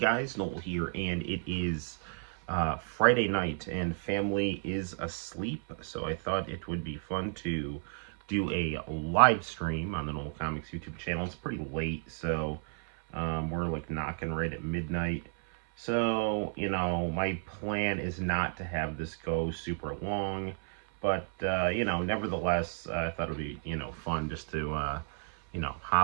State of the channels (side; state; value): left; silent; 56 dB below the other